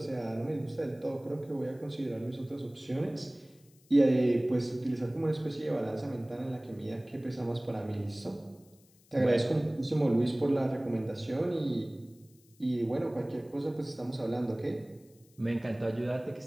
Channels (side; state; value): left; noise; hiss, 30 dB below the sound